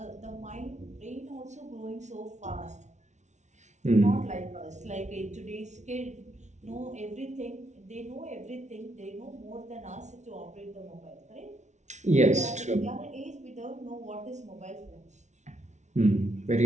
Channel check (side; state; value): left; late; 0.34 ms